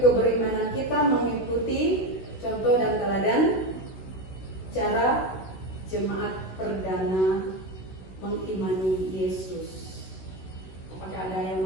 keberimanan kita mengikuti contoh dan teladan cara jemaat perdana mengimani Yesus. Apakah ada yang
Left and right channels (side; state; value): right; late; 16 ms